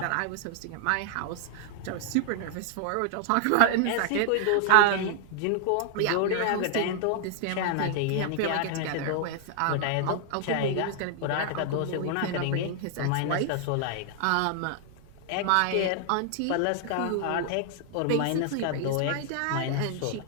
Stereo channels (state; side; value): different; both; correlation -0.01